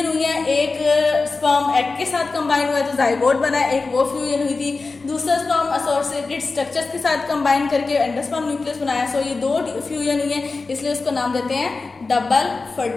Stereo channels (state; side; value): quieter; right; 3.9 dB